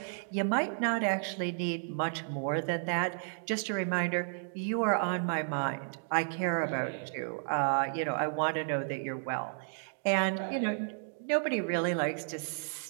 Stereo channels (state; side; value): silent; left; digital silence